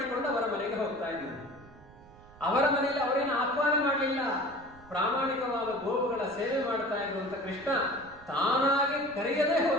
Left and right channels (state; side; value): noise; right; rumble, 23 dB below the sound